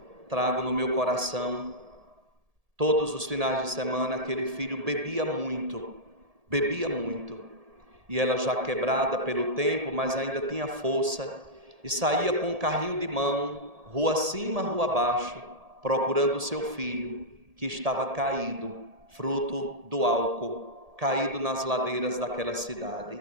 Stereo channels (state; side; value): late; left; 1.7 ms